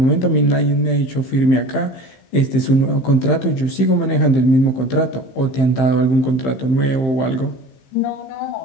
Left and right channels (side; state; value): right; late; 15 ms